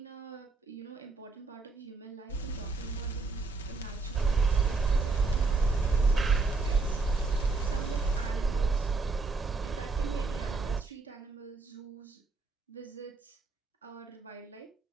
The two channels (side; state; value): left; quieter; 3.9 dB